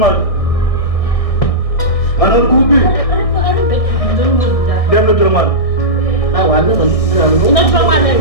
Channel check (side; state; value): right; late; 1.6 ms